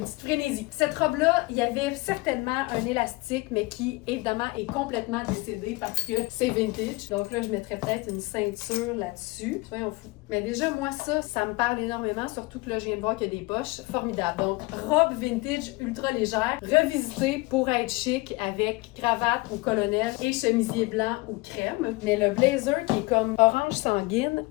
petite frénésie. Cette robe-là, il y avait certainement un élastique, mais qui, évidemment, est complètement décédé parce que c'est vintage. Donc là, je mettrais peut-être une ceinture là-dessus. Soyons fous. Mais déjà, moi, ça me parle énormément, surtout que là, je viens de voir qu'il y a des poches. Formidable. Donc, robe vintage ultra légère, revisitée pour être chic avec cravate ou colonel et chemisier blanc ou crème. Mais le blazer qui est comme orange sanguine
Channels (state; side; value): quieter; right; 23.6 dB